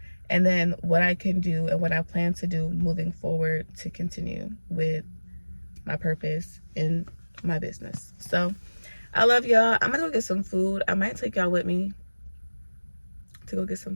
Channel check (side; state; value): both; inverted; correlation -1.00